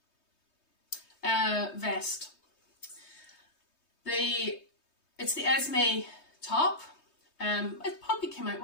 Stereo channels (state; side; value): late; right; 3.2 ms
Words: Vest. It's the Esme top. It probably came out,